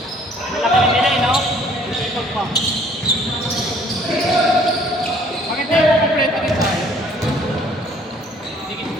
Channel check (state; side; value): normal; both; correlation 0.58